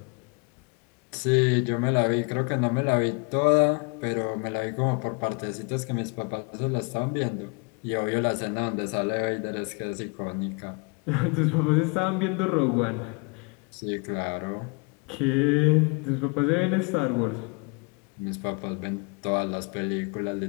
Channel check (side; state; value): right; quieter; 32.4 dB